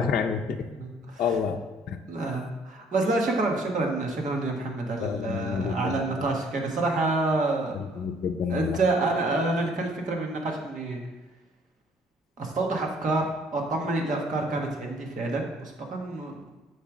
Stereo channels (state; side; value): normal; both; correlation 0.60